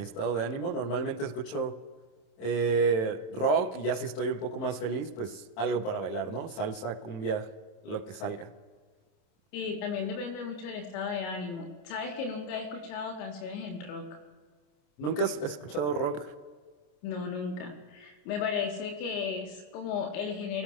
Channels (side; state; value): right; late; 27 ms